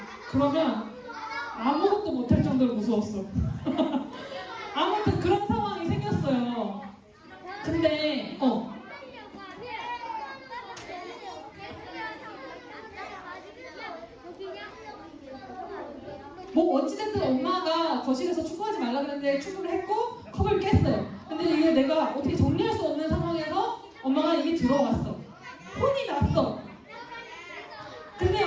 그러면 아무것도 못할 정도로 무서웠어. 아무튼 그런 상황이 생겼어요. 근데 뭐 어찌됐든 엄마가 거실에서 축구하지 말라 그랬는데 축구를 했고 컵을 깼어요. 근데 이게 내가 어떻게 정리할 수 없는 상황에서 엄마가 이게 들어왔어. 혼이 났어. 근데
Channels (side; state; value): both; identical; correlation 1.00